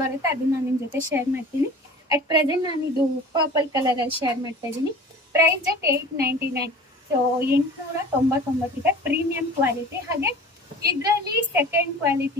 ಬರುತ್ತೆ, ಅದನ್ನ ನಾನು ನಿಮ್ಮ ಜೊತೆ ಶೇರ್ ಮಾಡ್ತೀನಿ. ಅಟ್ ಪ್ರೆಸೆಂಟ್ ನಾನು ಇದು ಪರ್ಪಲ್ ಕಲರಲ್ಲಿ ಶೇರ್ ಮಾಡ್ತಾ ಇದ್ದೀನಿ. Price at 899. ಸೊ 899 ಇದೆ. Premium quality. ಹಾಗೆ ಇದರಲ್ಲಿ ಸೆಕೆಂಡ್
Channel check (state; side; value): normal; both; correlation 0.41